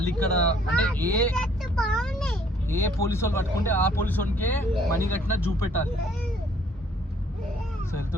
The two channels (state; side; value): normal; both; correlation 0.61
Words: ఇక్కడ అంటే ఏ పోలీసు వాళ్ళు పట్టుకుంటే ఆ పోలీసు వాడికే మనీ కట్టినా చూపెట్టాలి. సో